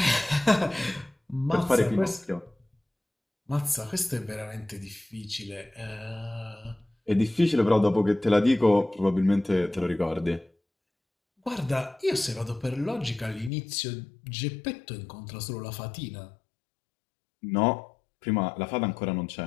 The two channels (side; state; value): right; drops out; at 13.5 s